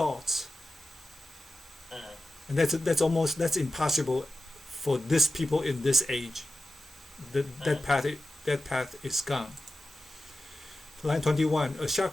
And that's impossible for this people in this age. That path is gone. Line 21. A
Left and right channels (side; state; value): both; normal; correlation 0.92